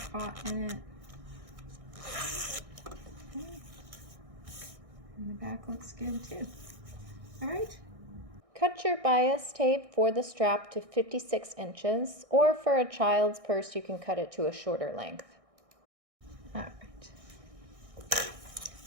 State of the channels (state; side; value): late; left; 1.6 ms